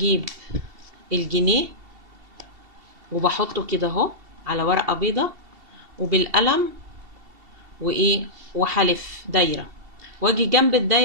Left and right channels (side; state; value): left; late; 2.7 ms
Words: الجنيه وبحطه كده اهو على ورقة بيضة وبالقلم وايه وحلف دايرة، واجي جنب